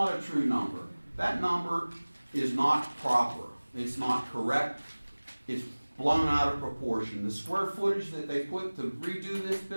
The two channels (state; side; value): inverted; both; correlation -1.00